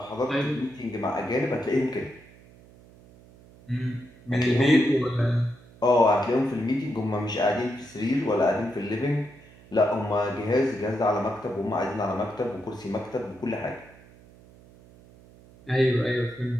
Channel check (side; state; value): right; noise; hum, 24 dB below the sound